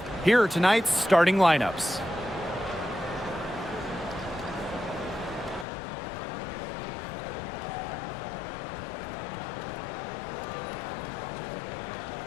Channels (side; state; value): right; drops out; at 5.7 s